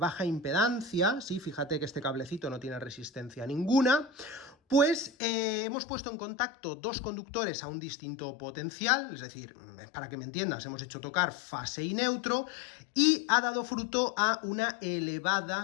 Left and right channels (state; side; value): drops out; right; at 5.1 s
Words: impedancia, sí, fíjate que este cablecito no tiene resistencia ninguna, pues hemos puesto en contacto dos conductores a un distinto potencial, es decir, para que me entiendas, hemos hecho tocar fase y neutro, y ha dado fruto a una